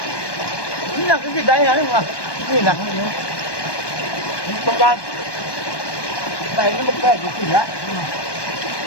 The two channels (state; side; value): late; right; 1.2 ms